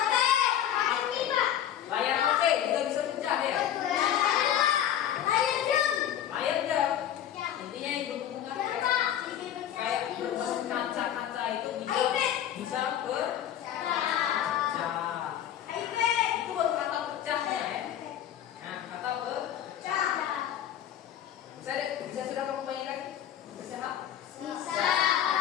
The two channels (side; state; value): right; quieter; 10.6 dB